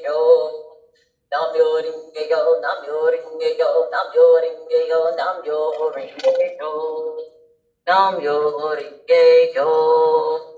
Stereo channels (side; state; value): both; identical; correlation 1.00